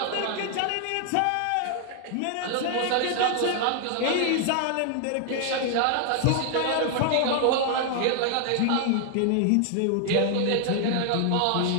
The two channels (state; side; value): different; both; correlation 0.00